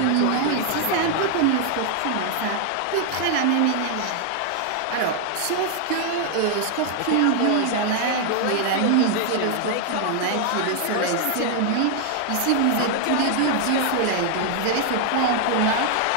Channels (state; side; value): different; both; correlation 0.00